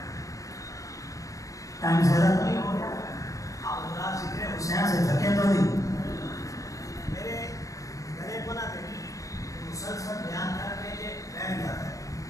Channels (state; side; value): late; right; 0.16 ms